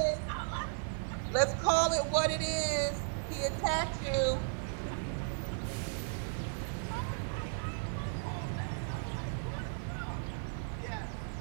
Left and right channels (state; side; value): silent; left; 54 dB below the other